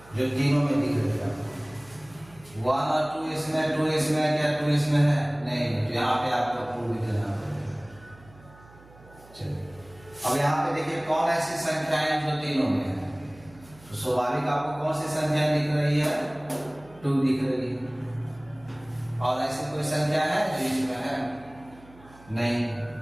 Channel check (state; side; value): noise; right; hum, 24 dB below the sound